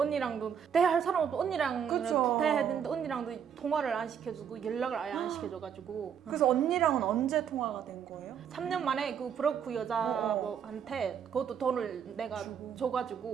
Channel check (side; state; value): left; quieter; 8.0 dB